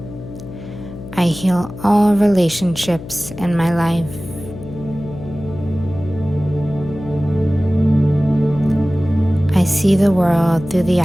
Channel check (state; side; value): noise; left; hum, 13 dB below the sound